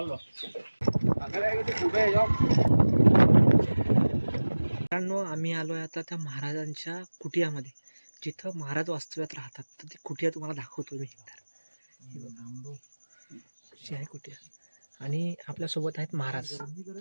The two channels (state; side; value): inverted; both; correlation -1.00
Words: मित्रांनो, आम्ही आलोय आता त्या महाराजांच्या कुटियामध्ये, जिथं महाराज वास्तव्यात राहतात. तर ती कुटिया तुम्हाला दाखवतो मी. आहे कुटिया आणि आपल्यासोबत आहेत महाराज.